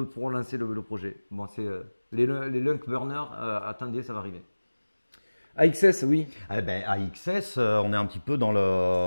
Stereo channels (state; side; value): inverted; both; correlation -1.00